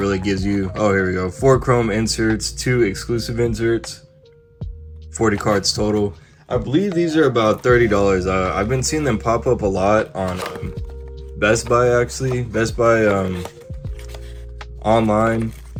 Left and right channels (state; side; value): identical; both; correlation 1.00